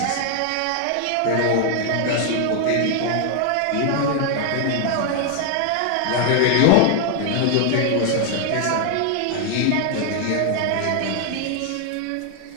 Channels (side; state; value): both; different; correlation 0.00